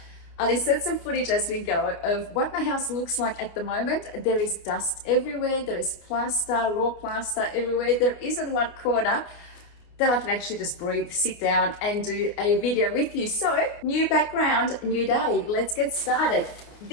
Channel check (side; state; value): right; late; 29 ms